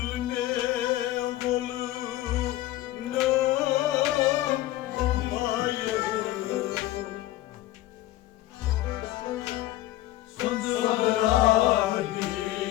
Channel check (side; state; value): right; quieter; 15.6 dB